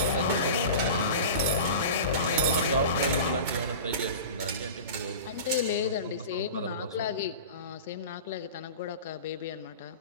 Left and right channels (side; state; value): both; inverted; correlation -0.34